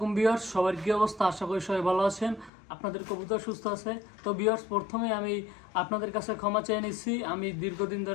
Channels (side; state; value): right; drops out; at 2.5 s